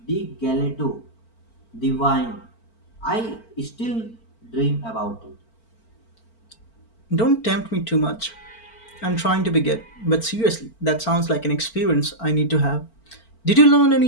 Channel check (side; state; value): right; late; 4.4 ms